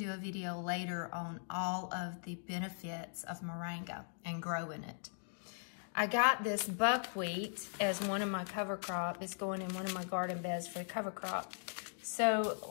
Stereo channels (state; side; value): silent; right; digital silence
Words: a video later on all of the benefits of moringa and growing it. I got this buckwheat as one of my cover crop. It's going in one of my garden beds for the cover crop. So